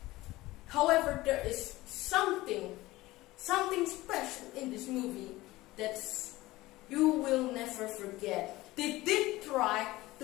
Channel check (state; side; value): quieter; right; 18.6 dB